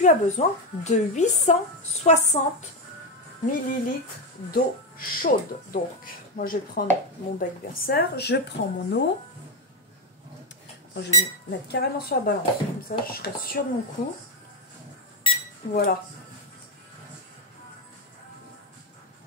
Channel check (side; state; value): both; normal; correlation 0.08